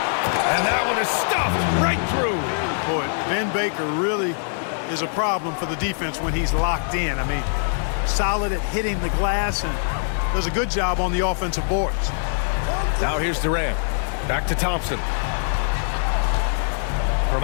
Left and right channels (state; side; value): silent; right; digital silence